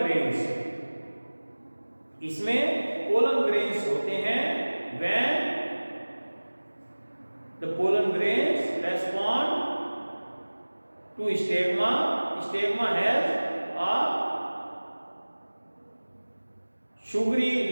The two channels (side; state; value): both; inverted; correlation -1.00